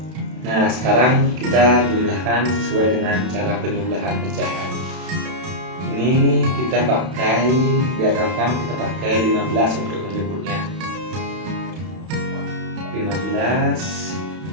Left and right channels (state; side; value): late; left; 32 ms